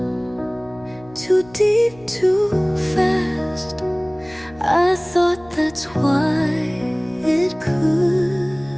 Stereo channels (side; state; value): left; noise; hum, 24 dB below the sound